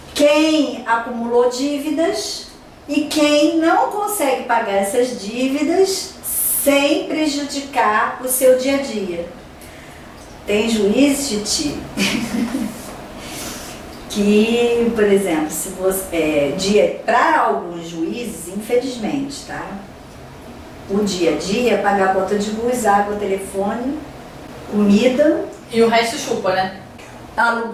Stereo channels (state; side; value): identical; both; correlation 1.00